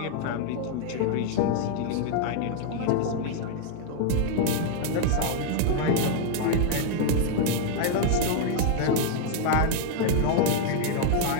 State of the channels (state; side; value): different; both; correlation 0.00